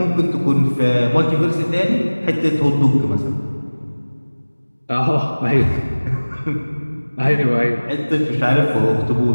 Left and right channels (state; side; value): inverted; both; correlation -1.00